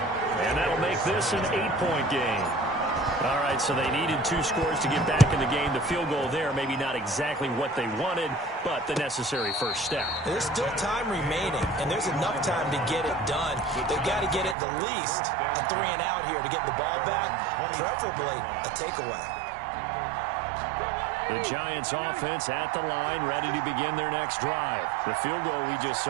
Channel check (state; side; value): drops out; left; at 14.6 s